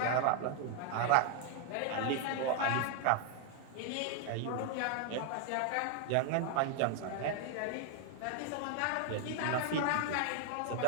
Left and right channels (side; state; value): both; different; correlation 0.00